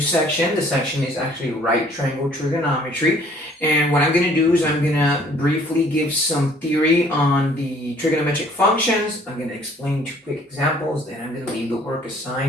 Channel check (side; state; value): both; normal; correlation 0.57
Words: section. The section is actually right triangle trigonometry. And what I'm going to do is I'm going to briefly give some theory on the trigonometric functions. I'm going to explain two quick examples, then I'm going to leave the work